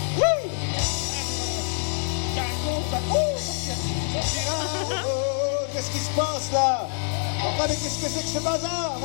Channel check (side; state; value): right; silent; digital silence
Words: Wouh! Qu'est-ce qui se passe là? Enfin, mais qu'est-ce que c'est que ce bazar?